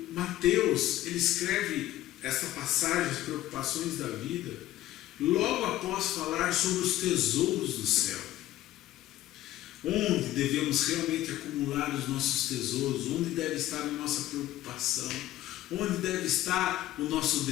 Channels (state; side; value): quieter; right; 14.7 dB